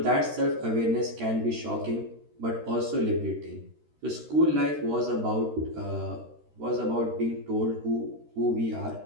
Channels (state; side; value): late; left; 13 ms